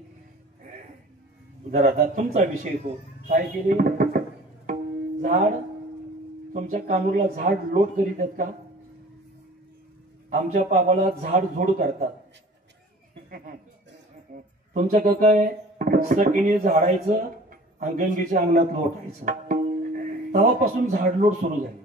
जरा आता तुमचा विषय हो. काय केली? झाड, तुमच्या कानूरला झाड लोट करीत आहेत का? आमच्या पावाला झाड झोड करतात. तुमच्या काय सकीने झाडायचं आणि गंगेच्या अंगणात लोटायचं. तेव्हापासून झाडलोट सुरू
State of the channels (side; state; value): both; normal; correlation 0.46